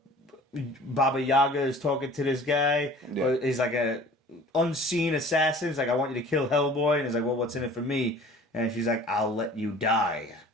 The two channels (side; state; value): both; normal; correlation 0.46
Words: Baba Yaga is talking to this guy? Yeah. Or he's like a unseen assassin. He's like, I want you to kill Hellboy, and he's like, well, what's in it for me? And she's like, I'll let you die.